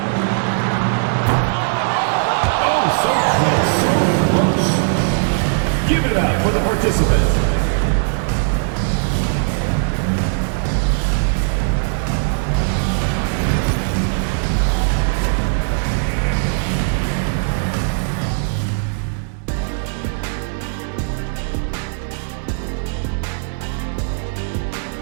Oh, so close, so close. Give it up for the participant.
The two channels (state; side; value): silent; left; 67 dB below the other